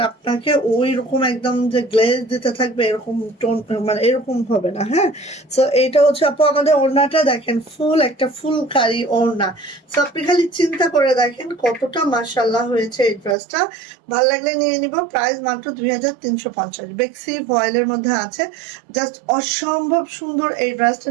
আপনাকে ওই রকম একদম যে গ্লেজ দিতে থাকবে এরকম টোন, মানে এরকম হবে না। হ্যাঁ, সো এইটা হচ্ছে আপু আমাদের ওড়নাটা দেখেন, ফুল একটা ফুলকারি ওড়না। সো আপনি খালি চিন্তা করে দেখেন কতটা মাশাআল্লাহ হয়েছে এই ড্রেসটা। ভালো লাগলে নিয়ে নিব। প্রাইস মাত্র 2350, বেক্সি ভয়েলের মধ্যে আছে। জাস্ট অসম্ভব সুন্দর। এই ড্রেসটা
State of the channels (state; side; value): drops out; left; at 13.4 s